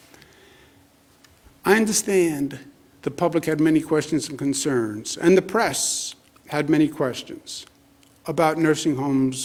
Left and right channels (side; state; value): both; identical; correlation 1.00